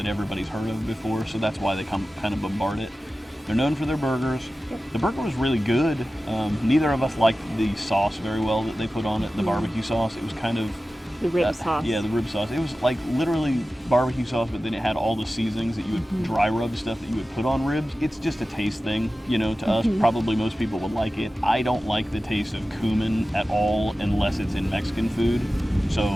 everybody's heard of before. So that's why they come kind of bombard it. They're known for their burgers. Yep. The burger was really good. Neither of us liked the sauce very well that they put on it, the barbecue sauce. It was kind of... The rib sauce. Yeah, the rib sauce. It was like literally barbecue sauce, but then it had all the seasonings that you would dry rub stuff that you would put on ribs. It's just a taste thing, to us. Probably most people would like it. I don't like the taste of cumin at all unless it's in Mexican food.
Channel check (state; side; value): normal; both; correlation 0.95